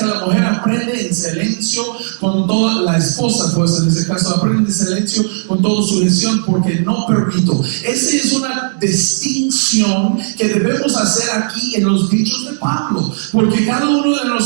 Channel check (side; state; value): left; silent; digital silence